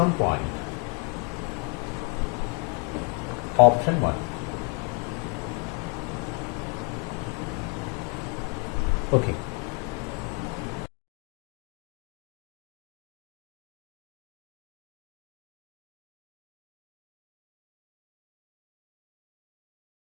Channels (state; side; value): quieter; right; 31.2 dB